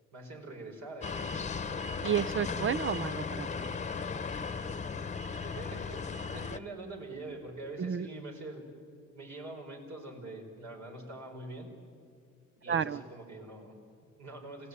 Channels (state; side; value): normal; both; correlation 0.17